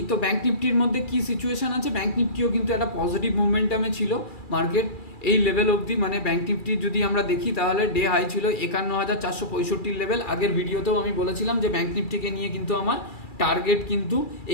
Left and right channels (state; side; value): late; right; 2.4 ms